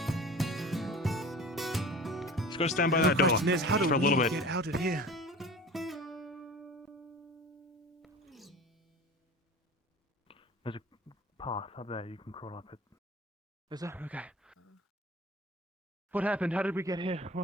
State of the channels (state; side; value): normal; both; correlation 0.38